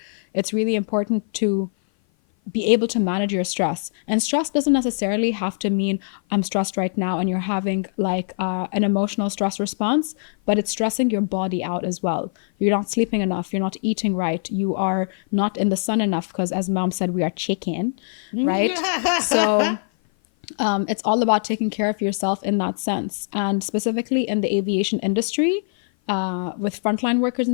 it's really important to be able to manage your stress. And stress doesn't necessarily have to mean I'm stressed right now and you're having like an emotional stress response, but it's stressing your body out as well. You're not sleeping enough, you're not eating right, you are not in the sun enough, because as mom said, we are chicken, right? So it's all about taking care of yourself in that sense. And specifically in the aviation industry, with frontline workers in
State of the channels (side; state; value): right; silent; 56 dB below the other